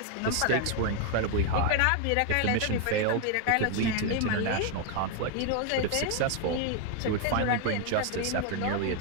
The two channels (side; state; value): both; different; correlation 0.01